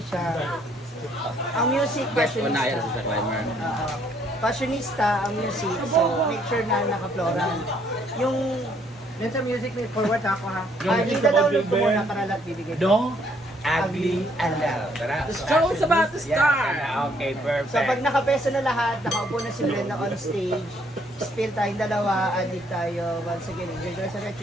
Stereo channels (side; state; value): both; normal; correlation 0.67